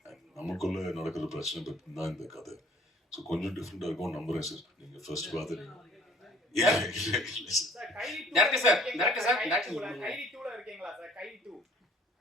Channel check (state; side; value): normal; both; correlation 0.54